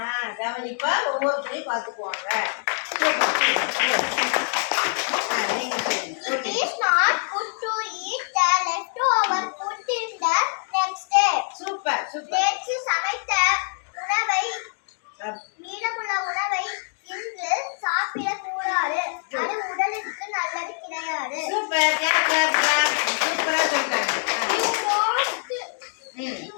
கவனிப்பா ஒவ்வொருத்தரையும் பார்த்துக்குவாங்க. நீங்க சொல்லுங்க. It is not good to eat the leftover food in the next day. Super super. நேற்று சமைத்த உணவை மீதமுள்ள உணவை இன்று சாப்பிடக்கூடாது. அது உடலுக்கு நல்லது கிடையாது. சூப்பர். Clap clap clap. சூப்பரா சொல்றாங்க. You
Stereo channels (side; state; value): right; silent; 58 dB below the other